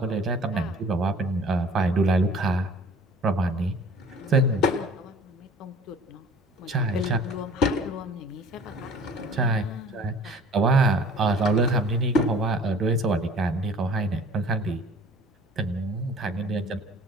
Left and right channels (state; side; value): normal; both; correlation 0.49